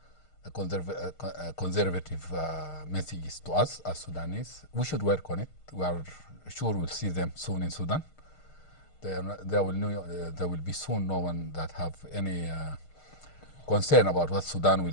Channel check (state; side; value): late; right; 6.5 ms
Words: a conservative messages to us as Sudanese. We should work on it. We are sure we'll see them soon in Sudan. There will be soon no one that have any concern about what Sudan